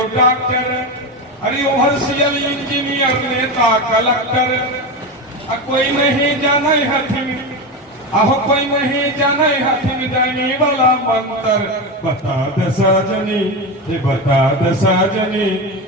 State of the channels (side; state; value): both; normal; correlation 0.18